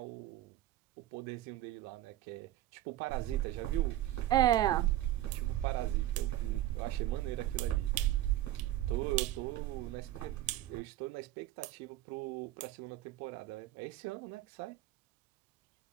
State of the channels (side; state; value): left; quieter; 14.3 dB